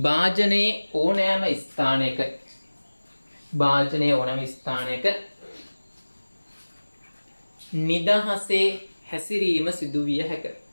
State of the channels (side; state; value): both; inverted; correlation -1.00